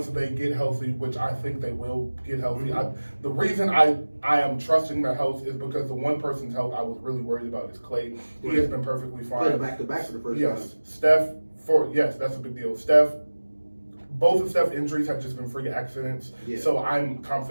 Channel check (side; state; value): both; inverted; correlation -1.00